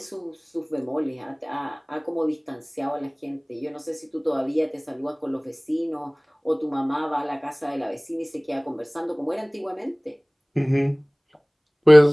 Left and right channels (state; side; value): identical; both; correlation 1.00